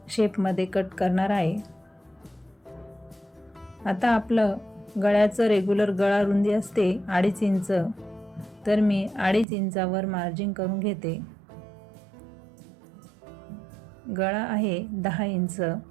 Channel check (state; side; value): drops out; left; at 9.5 s